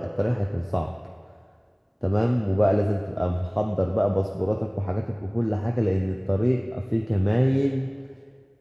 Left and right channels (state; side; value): identical; both; correlation 1.00